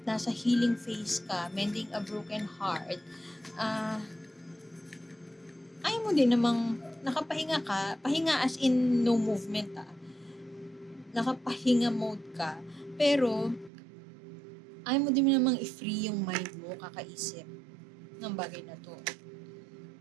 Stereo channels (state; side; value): drops out; left; at 13.7 s